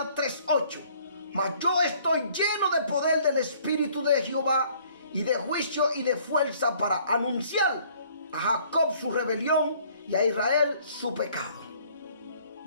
3:8. Mas yo estoy lleno de poder del Espíritu de Jehová, y de juicio y de fuerza, para anunciar a Jacob su rebelión y a Israel su pecado.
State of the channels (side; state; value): both; inverted; correlation -0.59